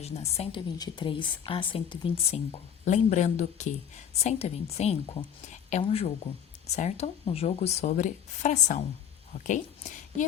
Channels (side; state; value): right; quieter; 8.7 dB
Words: 123 a 125. Lembrando que 125 é um jogo, certo? Um jogo sobre fração, ok? E